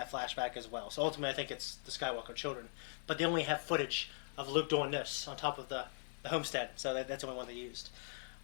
flashback as well. So ultimately, I think it's the Skywalker children. But they only have footage of Luke doing this on top of the homestead. So that's the only one they used.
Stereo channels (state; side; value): silent; right; 51 dB below the other